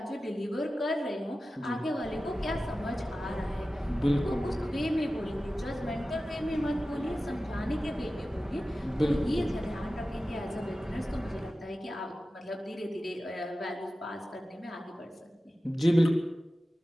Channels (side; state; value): both; normal; correlation 0.95